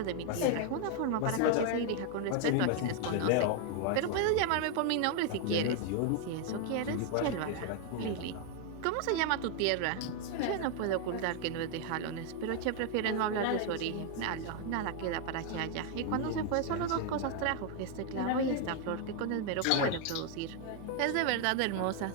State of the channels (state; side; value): different; both; correlation 0.00